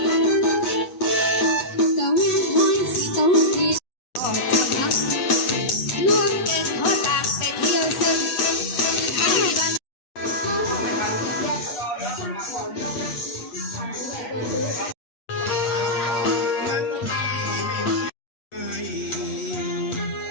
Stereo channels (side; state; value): right; late; 7.9 ms